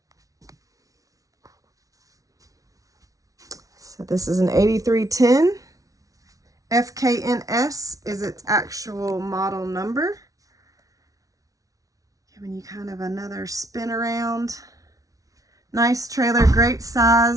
So this is an 8310. FKNS is its actual model number. Giving you kind of another spin around. Nice trailer, great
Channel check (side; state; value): left; late; 0.17 ms